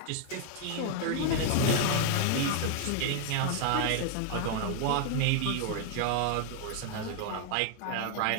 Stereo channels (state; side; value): different; both; correlation 0.00